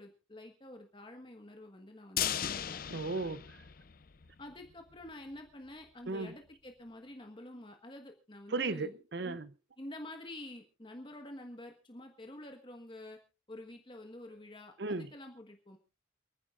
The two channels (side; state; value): both; normal; correlation 0.17